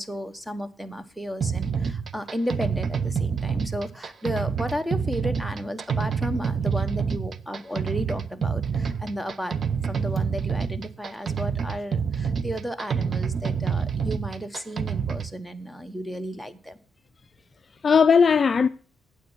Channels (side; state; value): both; normal; correlation 0.78